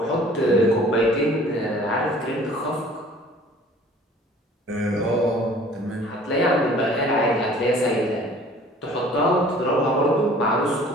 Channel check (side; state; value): both; normal; correlation 0.51